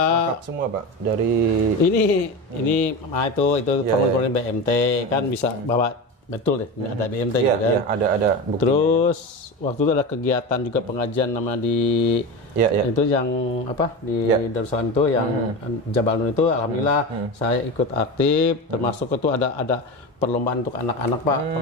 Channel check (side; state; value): both; normal; correlation 0.24